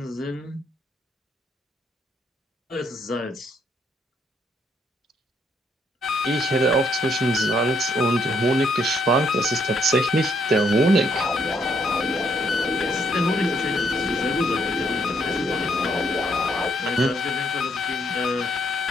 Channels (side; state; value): both; normal; correlation 0.72